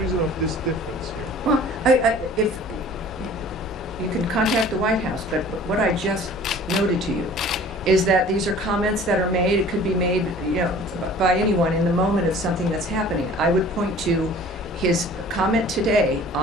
reason of this difference here? Well, if you can contact the White House, but what I just noted to you is that these are comments that are made, it could be made, by anyone in the moment of something that's happening. I would point to his comment today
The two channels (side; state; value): both; normal; correlation 0.47